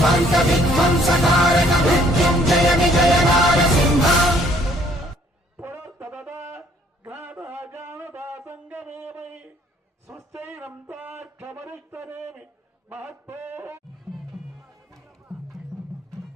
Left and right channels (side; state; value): both; normal; correlation 0.62